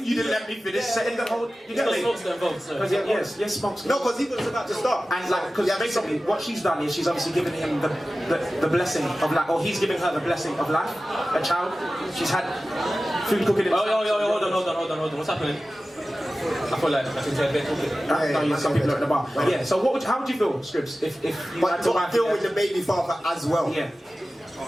didn't let me finish setting the whole... You get Smokes don't vote, sir. Yes, Smokes. No, because he was about to start. And like, because basically what she's done is she's obviously given him the blessing of life, or he's giving her the blessing of life, a child. She's had food cooking in the hold on. What's happening? I feel like I think they're talking. Some people are at the bar. But yeah, so how would you feel, Scripps, if you had to deal with the baby father as well? Yeah.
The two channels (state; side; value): normal; both; correlation 0.95